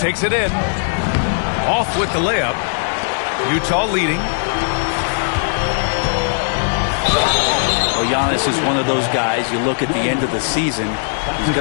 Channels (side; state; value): right; silent; digital silence